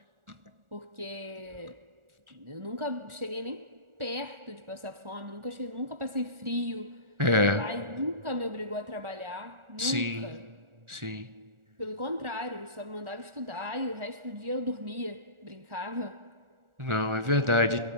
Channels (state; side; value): late; left; 1.4 ms